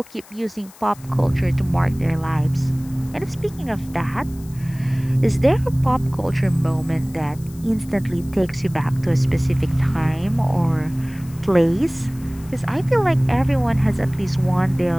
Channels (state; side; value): noise; left; hiss, 23 dB below the sound